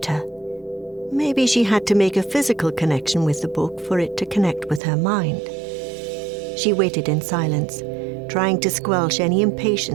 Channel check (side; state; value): left; drops out; at 4.8 s